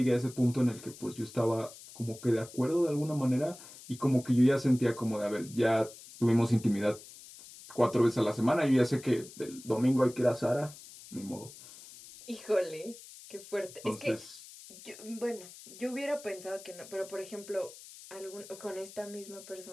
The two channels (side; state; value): left; noise; hiss, 18 dB below the sound